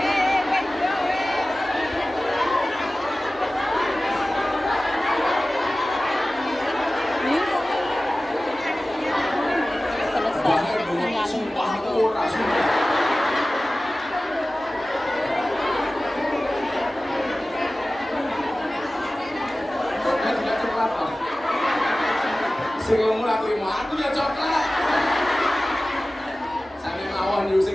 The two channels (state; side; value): normal; both; correlation 0.97